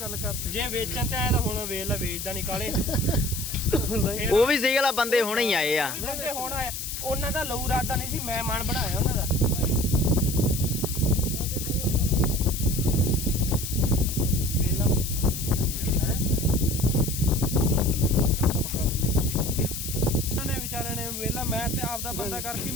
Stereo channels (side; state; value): left; noise; hiss, 6 dB below the sound